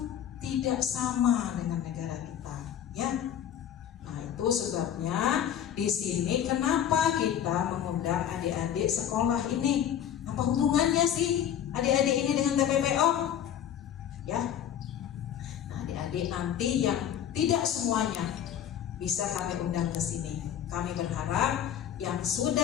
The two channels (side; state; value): right; quieter; 10.0 dB